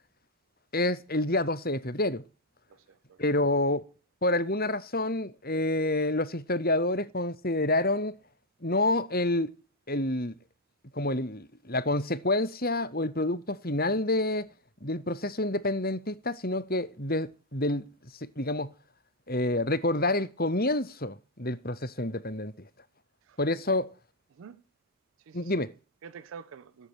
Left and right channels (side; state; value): both; normal; correlation 0.02